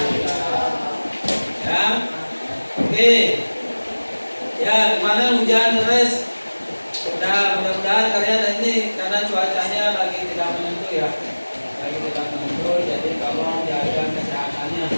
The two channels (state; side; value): inverted; both; correlation -1.00